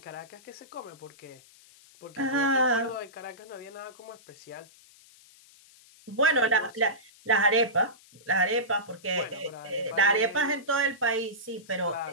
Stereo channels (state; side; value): noise; left; hiss, 25 dB below the sound